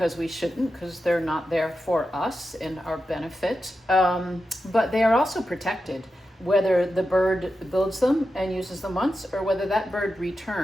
we shouldn't, because they're not there for us and our benefit, but they are also protected, whether the bird builds them and uses them once or whether that bird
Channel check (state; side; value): normal; both; correlation 0.90